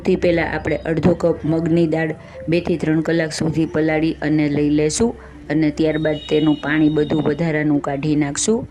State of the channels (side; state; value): both; identical; correlation 1.00